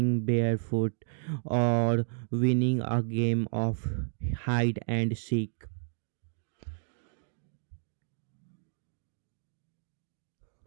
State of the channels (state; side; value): silent; left; digital silence